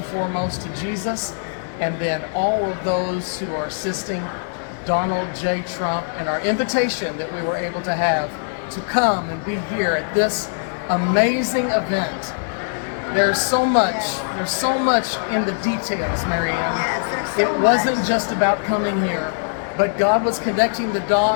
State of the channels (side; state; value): right; silent; digital silence